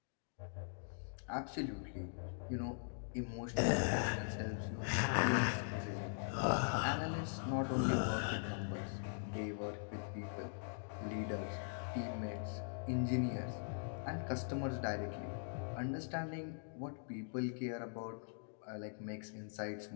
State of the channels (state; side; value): silent; right; digital silence